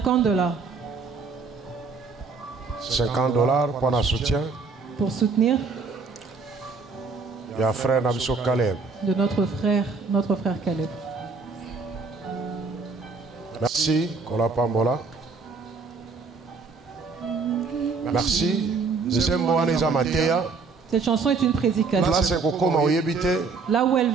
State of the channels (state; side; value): quieter; left; 4.6 dB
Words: dollars. 50 dollars pour un soutien. Pour soutenir. Il y a frère Nabiso Caleb. De notre frère Caleb. Merci, Kola Pambola. Merci. Cette chanson est une prédication. Là où elle